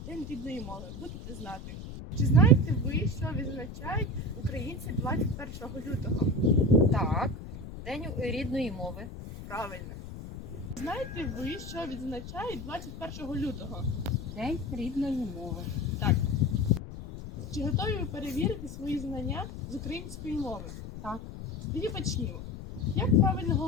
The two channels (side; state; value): left; noise; rumble, 10 dB below the sound